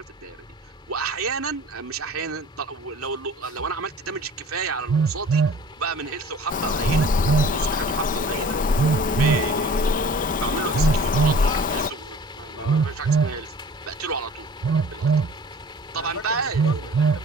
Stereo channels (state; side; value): normal; both; correlation 0.47